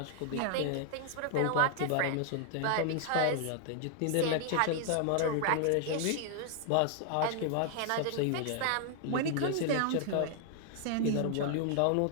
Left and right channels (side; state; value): both; different; correlation 0.00